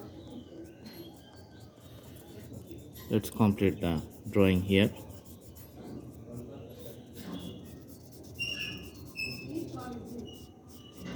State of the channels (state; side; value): identical; both; correlation 1.00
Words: let's complete the drawing here.